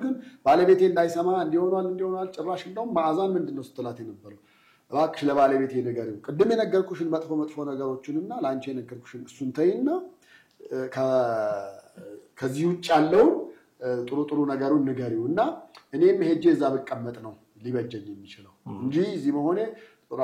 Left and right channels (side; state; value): both; identical; correlation 1.00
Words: ግን ባለቤቴ እንዳይሰማ እንዲሆናል ጭራሽ እንደውም ማዕዛን ምንድነው ስትላት የነበረው እባክሽ ለባለቤቴ ንገሪው፣ ቅድም የነገርኩሽን መጥፎ ነገሮችንና ላንቺ የነገርኩሽን እሱን ተይና ከዚህ ውጭ ያለውን ጥሩ ነገሩን ንገሪውና እኔም ሄጄ እዛ በቀመጥ ነው ሊበጀኝ የሚችለው እንጂ እዚህ መሆኔ ጥሩ